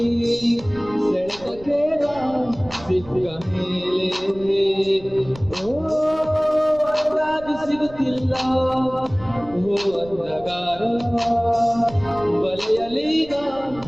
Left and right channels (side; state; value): right; noise; rumble, 19 dB below the sound